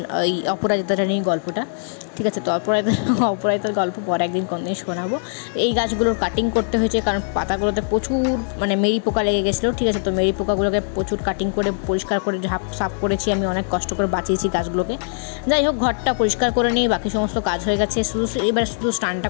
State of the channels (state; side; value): silent; right; digital silence